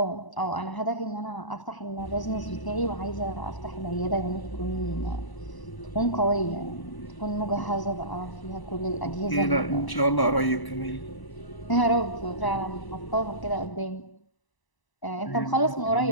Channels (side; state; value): right; late; 1.0 ms